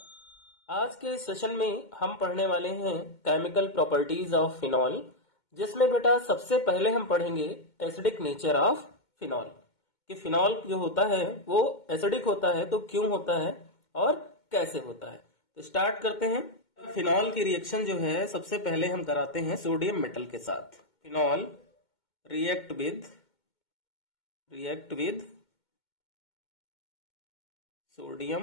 आज के सेशन में हम पढ़ने वाले हैं केमिकल प्रॉपर्टीज ऑफ फिनॉल, जिसमें बेटा सबसे पहले हम पढ़ेंगे एसिडिक नेचर ऑफ फिनॉल कि फिनॉल जो होता है वो एसिडिक होता है तो क्यों होता है और कैसे होता है। तो स्टार्ट करते हैं। फिनॉल की रिएक्शन जो है सबसे पहले हम कराते हैं सोडियम मेटल के साथ। Phenol react with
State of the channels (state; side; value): late; right; 2.2 ms